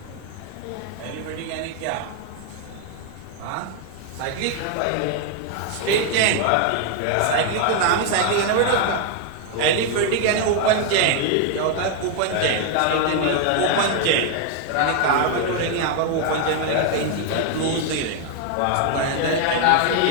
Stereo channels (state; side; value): different; both; correlation 0.00